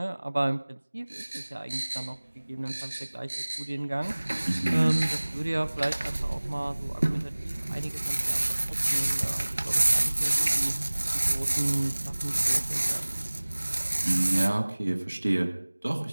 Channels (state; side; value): inverted; both; correlation -1.00